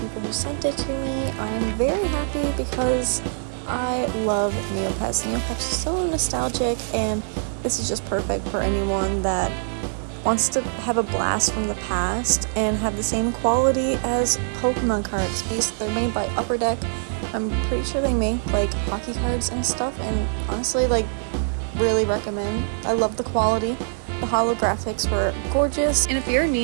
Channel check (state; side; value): silent; left; 63 dB below the other